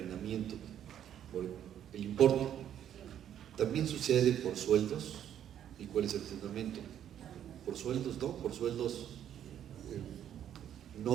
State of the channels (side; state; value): left; quieter; 10.2 dB